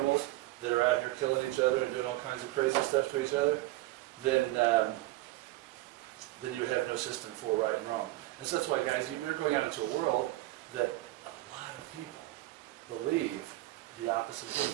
that are out here killing each other and doing all kinds of crazy stuff to each other, then you would have no system for right and wrong. And so that's why, guys, you're going out into a world that a lot of people believe the opposite thing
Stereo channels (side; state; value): left; quieter; 18.1 dB